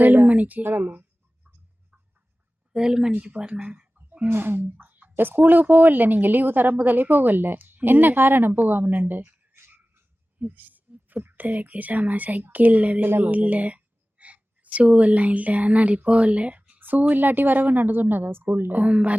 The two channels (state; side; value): normal; both; correlation 0.97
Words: மணிக்கு. 7 மணிக்கு போறேன். ஸ்கூலுக்கு போகல நீங்க? லீவு தர முதலே போகல? என்ன காரணம் போகாம? புத்தகைக்கு சாமா சைக்கிள் இல்ல, ஷூ எல்லாம் இல்ல, அதனால போகல. ஷூ இல்லாட்டி வரவனான்னு சொன்னதா ஸ்கூல்ல?